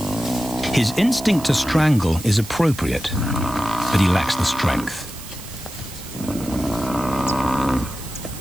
His instinct to strangle is appropriate, but he lacks the strength.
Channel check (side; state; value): right; noise; hiss, 15 dB below the sound